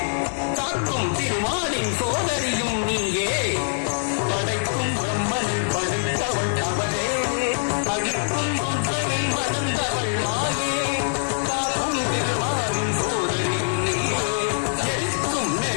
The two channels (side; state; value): right; silent; 61 dB below the other